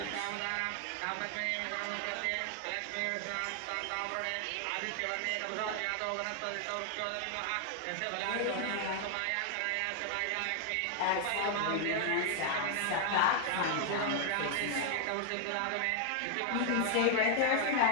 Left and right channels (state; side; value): different; both; correlation 0.00